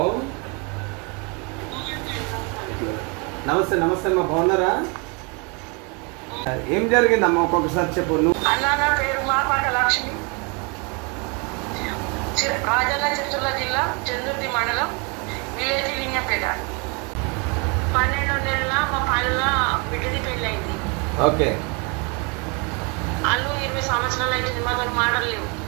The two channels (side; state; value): left; quieter; 32.1 dB